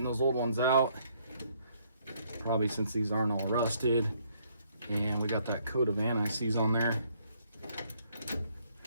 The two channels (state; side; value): inverted; both; correlation -0.68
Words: those old ones out. Probably since these aren't all rusted. And we got that coat of anti-seize on there.